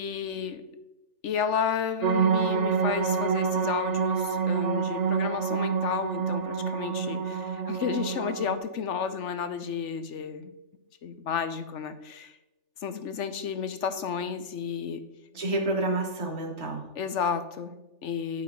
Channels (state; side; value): late; right; 3.4 ms